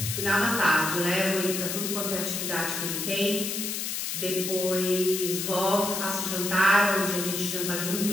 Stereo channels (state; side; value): noise; left; hiss, 3 dB below the sound